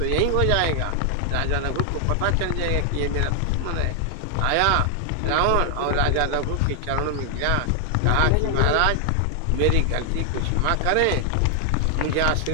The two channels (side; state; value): both; different; correlation 0.00